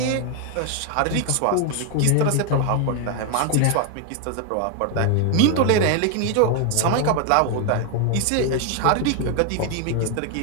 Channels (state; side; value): different; both; correlation 0.01